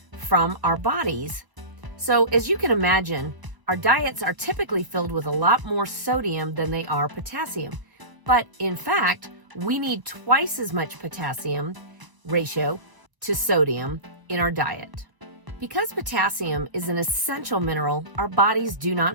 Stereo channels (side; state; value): left; late; 1.0 ms